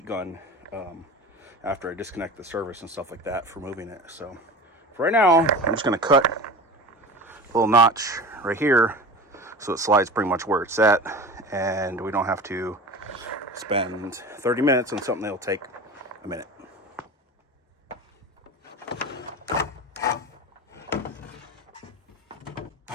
gun after I disconnect the service and stuff like that for moving it. So for right now, I'm just going to cut a little notch right here so it slides pretty much where it's at, and we don't have to spend 30 minutes on something that'll take a minute.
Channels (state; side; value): normal; both; correlation 0.33